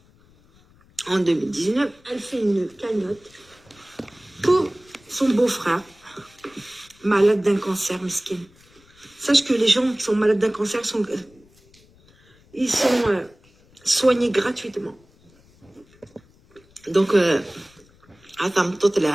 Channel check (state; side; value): noise; left; rumble, 29 dB below the sound